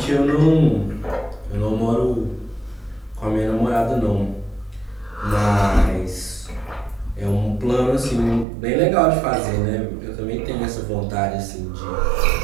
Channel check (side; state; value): left; drops out; at 8.5 s